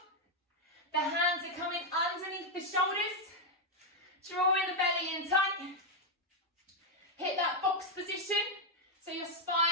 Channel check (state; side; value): normal; both; correlation 0.01